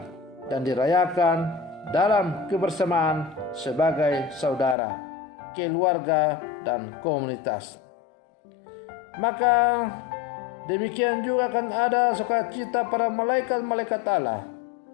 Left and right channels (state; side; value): drops out; right; at 4.8 s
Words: dan dirayakan dalam kebersamaan sebagai saudara, keluarga, dan komunitas. Maka demikian juga akan ada sukacita para malaikat-malaikat Allah